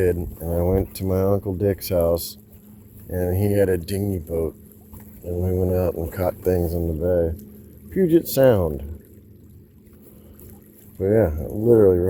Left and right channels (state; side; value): identical; both; correlation 1.00